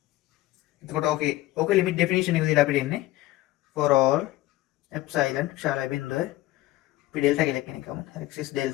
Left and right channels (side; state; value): right; quieter; 16.7 dB